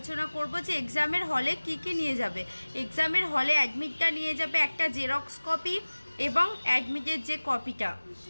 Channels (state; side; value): inverted; both; correlation -1.00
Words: করব যে এক্সামের হলে কি কি নিয়ে যাবে। এক্সামের হলে অ্যাডমিটটা নিয়ে যাবে, একটা জেরক্স কপি এবং অ্যাডমিটের যে কপিটা,